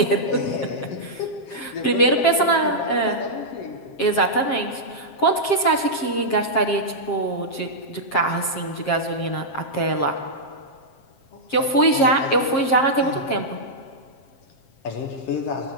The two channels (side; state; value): right; late; 7.5 ms